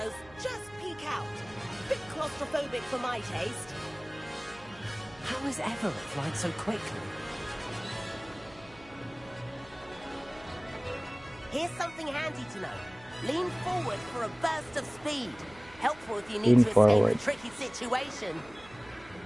just peek out. Bit claustrophobic for my taste. How is Everett flying so quickly? Here's something handy to know. Lean forward for a burst of speed. Helpful if you Lean need to forward. escape a tricky situation.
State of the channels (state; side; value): noise; right; hum, 23 dB below the sound